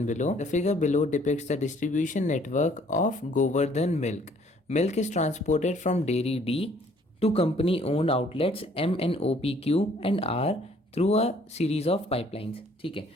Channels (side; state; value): both; normal; correlation 0.60